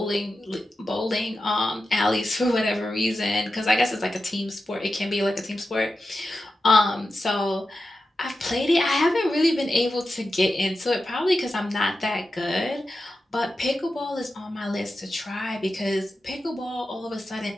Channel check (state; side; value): normal; both; correlation 0.91